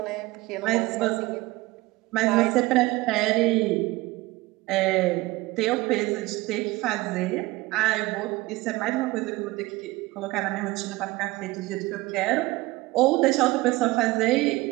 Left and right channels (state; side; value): quieter; left; 20.5 dB